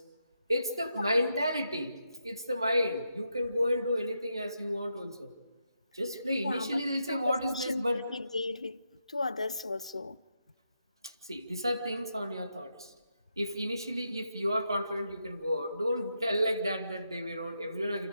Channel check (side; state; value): both; inverted; correlation -0.83